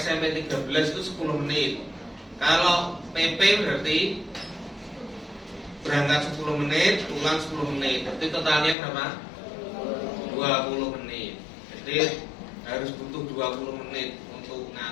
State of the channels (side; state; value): right; drops out; at 8.8 s